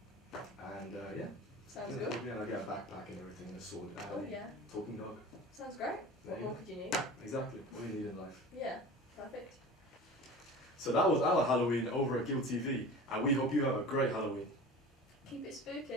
And yeah. Sounds Yeah, good. yeah, I get a backpack and everything and a sword. And Oh a yeah, talking dog. sounds great. There What you more go. could you need? Exactly. What you need in life. Yeah, perfect. So that was our Halloween over at Guild TV, and we hope you have a great Halloween. Keep it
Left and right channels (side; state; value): both; normal; correlation 0.37